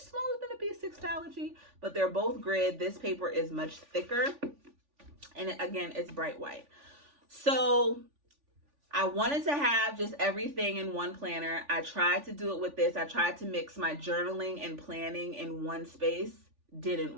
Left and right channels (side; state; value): left; late; 3.5 ms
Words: than a B6 Astrology, but they're both grid. This paper is much thicker. And again, it's bright white. So I wanted to have just everything in one planner. I tried to do it with this. I tried to mix my journaling and planning in one space. Didn't